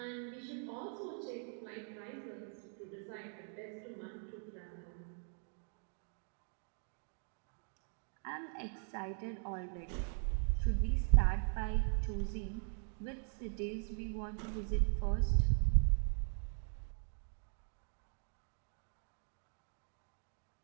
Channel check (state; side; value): silent; left; 51 dB below the other